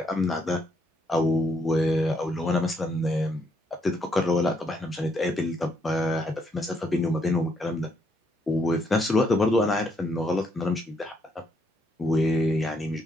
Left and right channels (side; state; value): both; normal; correlation 0.73